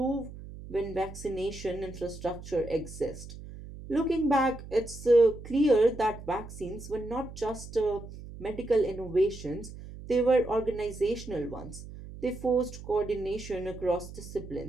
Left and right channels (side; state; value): right; noise; hum, 13 dB below the sound